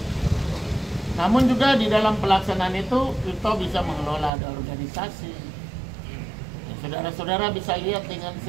Namun juga di dalam pelaksanaan itu kita bisa mengelola ada organisasi. Saudara-saudara bisa lihat dengan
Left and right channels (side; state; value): left; drops out; at 4.3 s